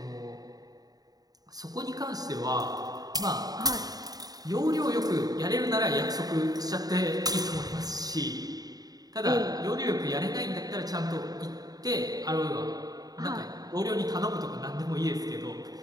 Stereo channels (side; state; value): left; late; 0.18 ms